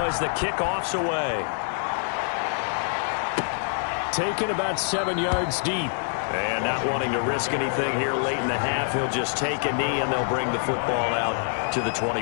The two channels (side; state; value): right; silent; digital silence